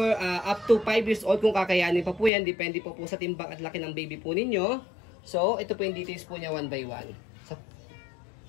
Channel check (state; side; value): drops out; right; at 2.3 s